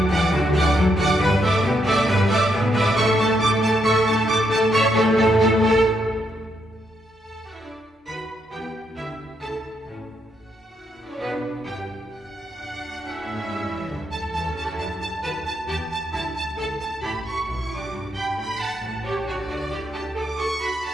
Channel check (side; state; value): both; normal; correlation 0.78